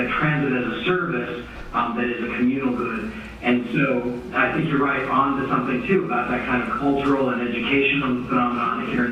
transit as a service that is a communal good. And so I think you're right on to something too about that kind of cultural and educational phenomenon here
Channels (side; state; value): both; identical; correlation 1.00